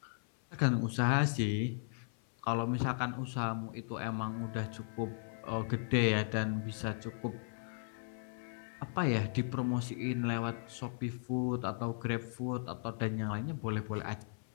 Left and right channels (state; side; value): silent; right; 53 dB below the other